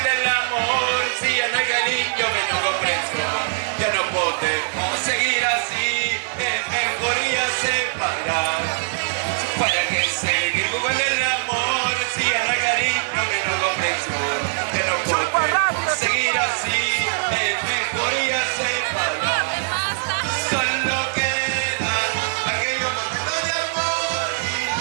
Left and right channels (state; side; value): silent; left; digital silence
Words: el amor si ya no hay cariño, menos comprensión? Ya no podemos seguir así, es mejor ya separar. ¿Para qué seguir jugando el amor si ya no hay cariño, menos comprensión? Ya no podemos seguir así, es mejor ya separar. Solo queda aquellos momentos de amor y